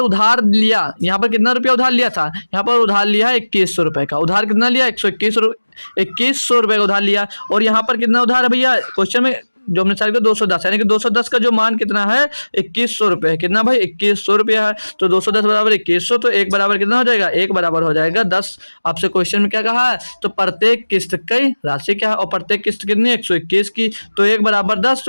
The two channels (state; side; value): inverted; both; correlation -1.00